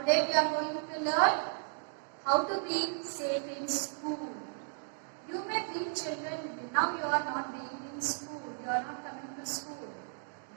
we are going to learn how to be safe in school. You may think children, now you are not being in school, you are not coming to school.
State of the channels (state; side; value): silent; left; 55 dB below the other